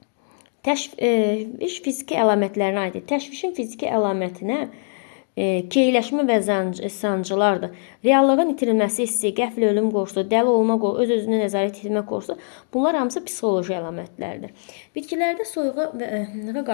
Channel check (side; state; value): right; silent; digital silence